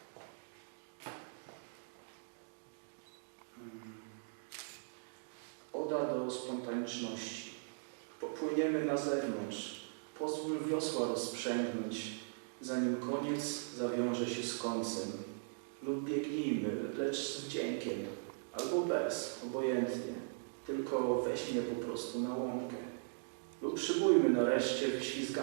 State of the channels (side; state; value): left; silent; digital silence